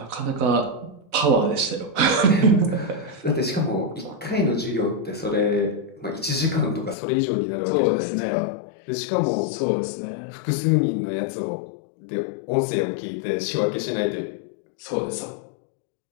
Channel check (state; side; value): drops out; right; at 7.0 s